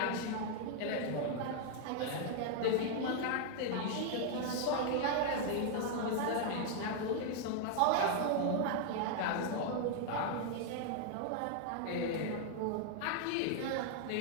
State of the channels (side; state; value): both; different; correlation 0.00